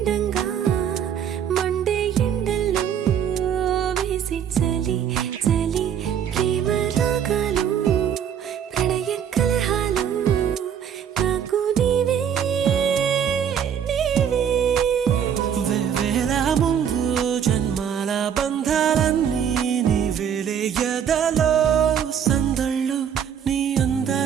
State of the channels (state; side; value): quieter; left; 8.5 dB